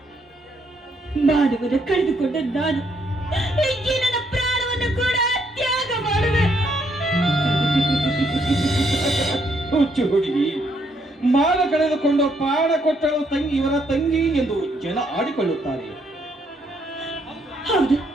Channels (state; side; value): normal; both; correlation 0.72